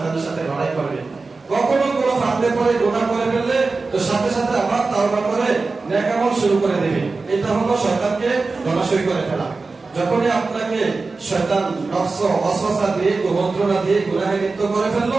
সাথে লড়াই করবে। কখনো কোনো ফাঁদে পড়ে গুনাহ করে ফেললে তো সাথে সাথে আবার তাওবা করে নেক আমল শুরু করে দেবে। এটা হলো শয়তানকে ধরাশয়ী করে ফেলা। যখনই আপনাকে শয়তান নফস ওয়াসওয়াসা দিয়ে, কুমন্ত্রণা দিয়ে গুনাহে লিপ্ত করে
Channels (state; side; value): quieter; left; 3.9 dB